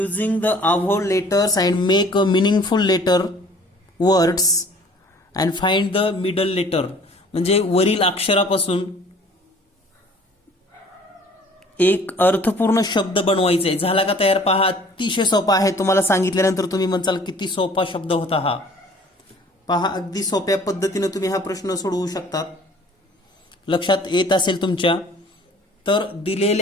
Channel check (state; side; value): normal; both; correlation 0.52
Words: the above letters and make a meaningful letter words and find the middle letter. म्हणजे वरील अक्षरापासून एक अर्थपूर्ण शब्द बनवायचा आहे. झाला का तयार? पहा, अतिशय सोपा आहे. तुम्हाला सांगितल्यानंतर तुम्ही म्हणताल किती सोपा शब्द होता हा. पहा, अगदी सोप्या पद्धतीने तुम्ही हा प्रश्न सोडवू शकतात. लक्षात येत असेल तुमच्या. तर